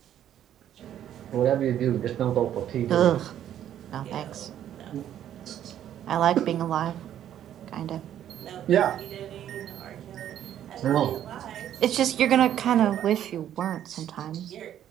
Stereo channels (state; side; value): quieter; left; 10.8 dB